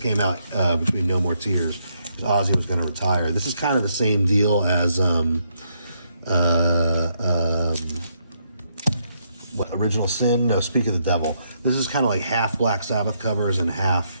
out between No More Tears, because Ozzy was going to retire. This is kind of the same deal as Original Sin? No, Speak of the Devil. This is kind of like half Black Sabbath covers and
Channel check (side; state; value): both; inverted; correlation -0.76